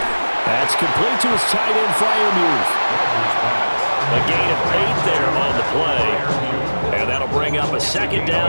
That's complete to his tight end, Fryermuth. A gain of 8 there on the play. And that'll bring up a second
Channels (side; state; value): both; inverted; correlation -1.00